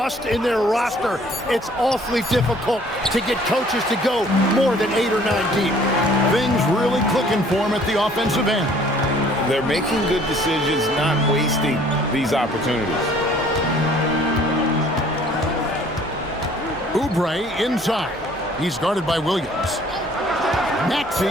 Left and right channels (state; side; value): normal; both; correlation 0.56